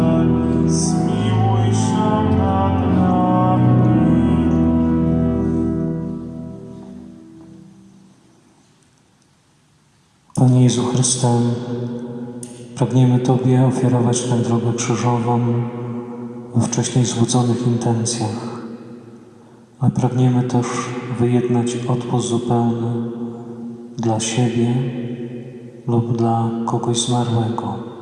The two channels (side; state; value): both; identical; correlation 1.00